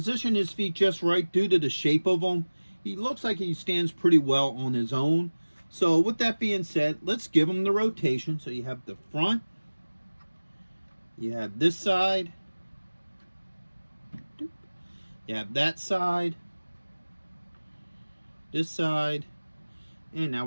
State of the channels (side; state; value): both; inverted; correlation -1.00